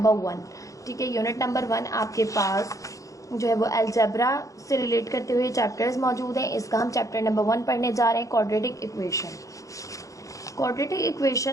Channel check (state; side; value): late; right; 0.16 ms